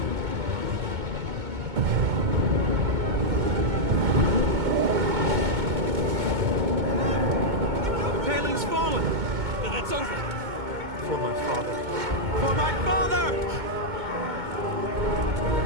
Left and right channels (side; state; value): left; late; 2.2 ms